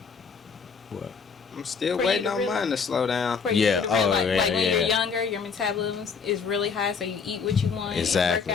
what? I'm still For you waiting to on really- mine to slow down. For you Yeah, to really, oh, like, yeah, like when yeah. you're younger, your metabolism is really high, so you eat what you want Exactly.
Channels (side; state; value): right; quieter; 5.7 dB